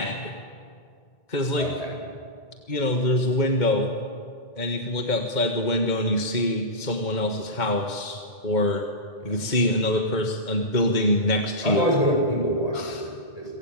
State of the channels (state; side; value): late; right; 2.1 ms